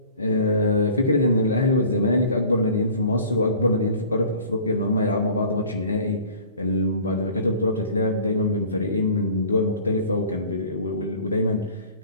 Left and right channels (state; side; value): inverted; both; correlation -0.47